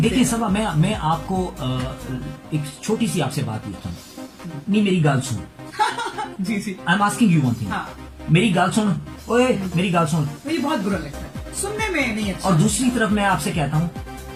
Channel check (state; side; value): identical; both; correlation 1.00